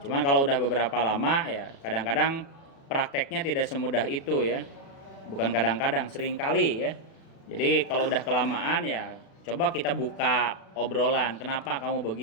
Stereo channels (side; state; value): right; late; 36 ms